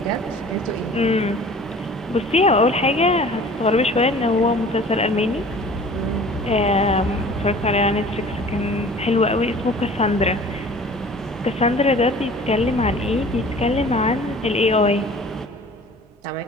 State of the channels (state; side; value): normal; both; correlation 0.46